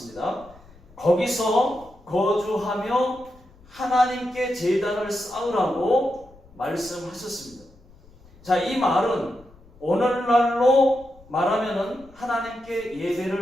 거기서 거주하며 하나님께 제단을 쌓으라고 말씀하셨습니다. 자, 이 말은 오늘날로 말하면은 하나님께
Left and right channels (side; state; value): left; noise; rumble, 25 dB below the sound